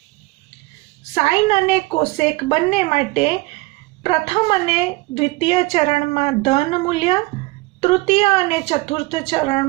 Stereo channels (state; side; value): quieter; left; 22.4 dB